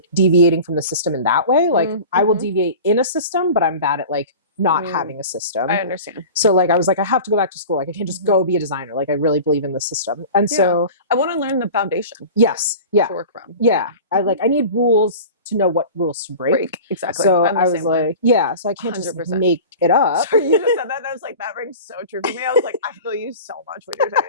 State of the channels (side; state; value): both; inverted; correlation -0.37